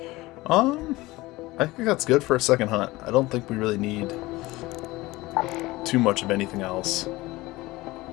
I think that's good for a second hunt. I don't think we really need too much of anything else.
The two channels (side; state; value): right; quieter; 19.8 dB